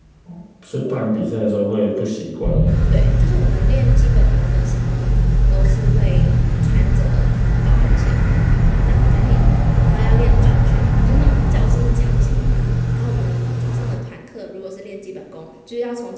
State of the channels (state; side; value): identical; both; correlation 1.00